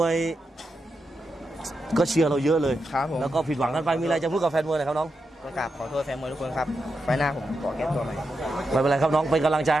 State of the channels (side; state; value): both; normal; correlation 0.86